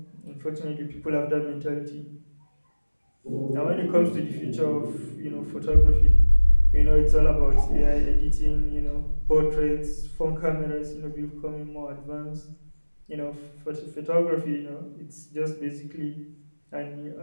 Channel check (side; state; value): both; inverted; correlation -1.00